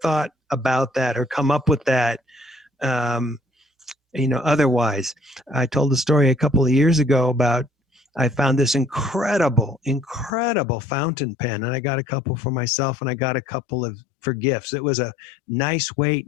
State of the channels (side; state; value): right; drops out; at 10.3 s